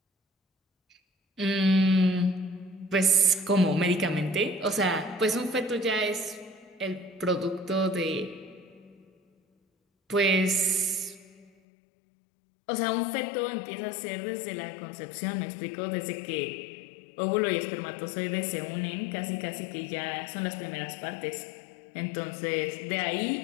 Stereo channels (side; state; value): right; drops out; at 11.5 s